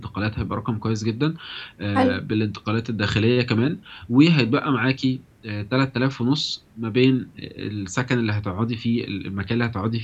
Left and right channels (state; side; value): identical; both; correlation 1.00